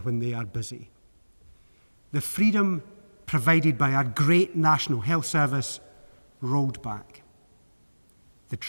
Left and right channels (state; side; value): inverted; both; correlation -1.00